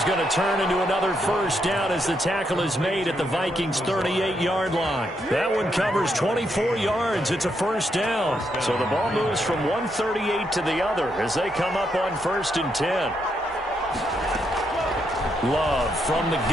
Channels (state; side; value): normal; both; correlation 0.79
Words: going to turn into another first down as the tackle is made at the Vikings' 38-yard line. That one covers 24 yards. It's a first down. So the ball moves from 138 to the other as they come up on first and 10. Love from the